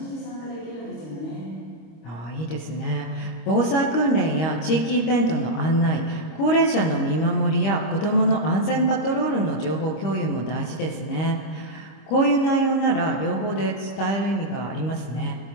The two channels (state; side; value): late; right; 26 ms